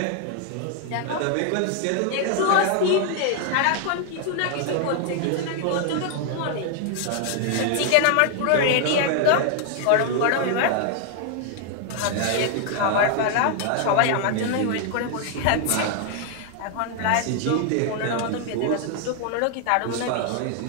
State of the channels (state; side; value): different; both; correlation 0.00